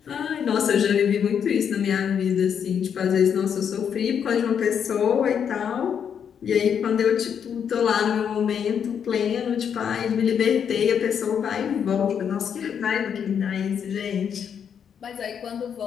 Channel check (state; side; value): quieter; right; 7.8 dB